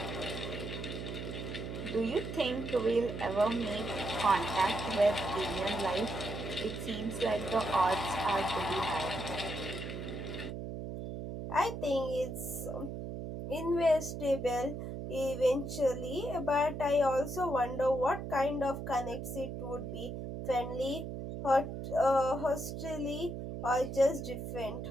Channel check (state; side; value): noise; right; hum, 6 dB below the sound